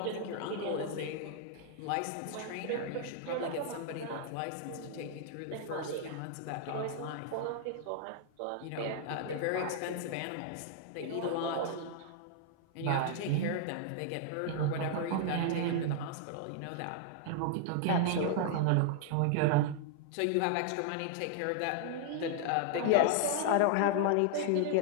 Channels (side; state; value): both; different; correlation 0.00